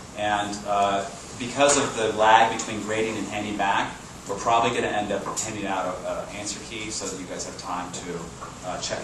And because of the lag between grading and handing back, we're probably going to end up handing out an answer key so that you guys have time to check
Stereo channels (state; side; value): identical; both; correlation 1.00